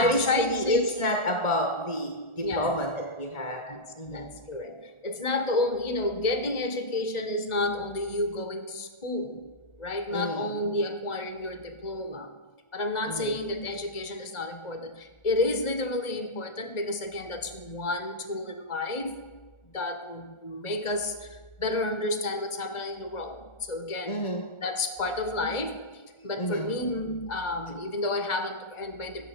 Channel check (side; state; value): right; late; 1.4 ms